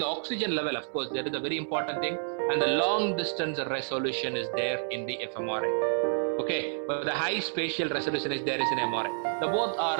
oxygen level. Of course, that is a very important thing. And the long distance resolution is there in the fMRI. Okay, but the high spatial resolution is there in MRI. The both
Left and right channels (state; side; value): silent; left; 58 dB below the other